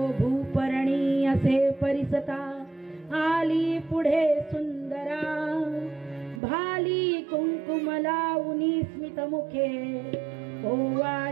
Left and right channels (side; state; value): left; drops out; at 6.4 s